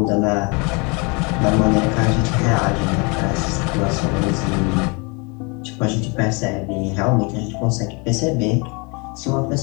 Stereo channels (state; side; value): quieter; right; 30.9 dB